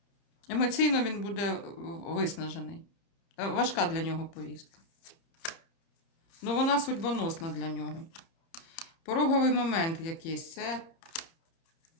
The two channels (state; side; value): late; right; 30 ms